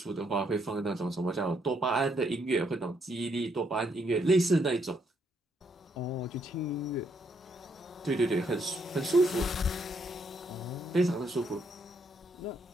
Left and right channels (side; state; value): both; normal; correlation 0.74